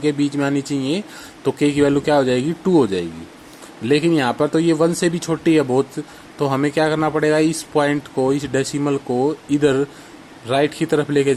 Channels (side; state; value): both; identical; correlation 1.00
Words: बीच में आनी चाहिए। तो k की वैल्यू क्या हो जाएगी, 2 हो जाएगी। लेकिन यहाँ पर तो ये 1 से भी छोटी है बहुत, तो हमें क्या करना पड़ेगा, इस पॉइंट को, इस डेसिमल को इधर राइट की तरफ लेके